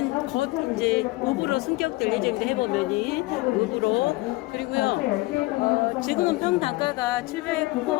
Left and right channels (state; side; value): quieter; right; 21.8 dB